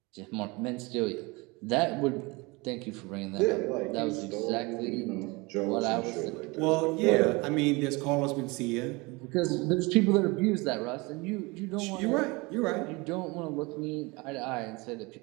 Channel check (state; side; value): quieter; left; 25.5 dB